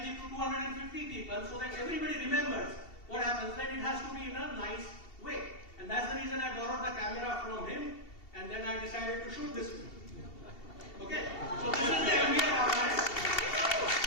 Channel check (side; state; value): right; late; 2.7 ms